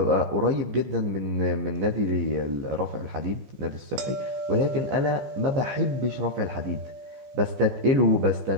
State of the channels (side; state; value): left; late; 15 ms